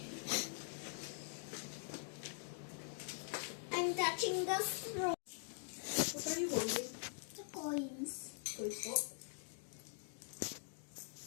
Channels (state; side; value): silent; right; digital silence